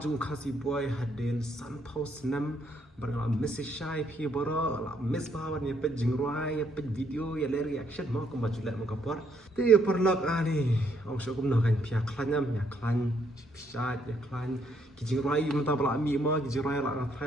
khasi boy hadin sun house nam barang message shy phi boro la miss bawan ya pet jingruai ya pet video ya le reaction mo ko majula mo kapor ti perlok ani ong so kum no kan pia klanyam ya klan pisa ya klan ki jingruai menta bala mi mo ki jingruai la na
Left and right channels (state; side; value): normal; both; correlation 0.71